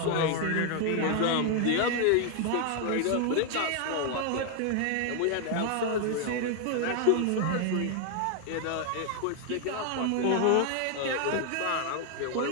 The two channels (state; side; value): different; both; correlation 0.00